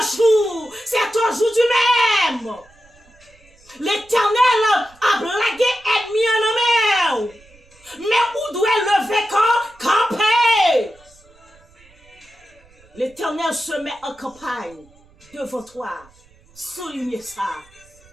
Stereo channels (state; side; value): noise; right; rumble, 29 dB below the sound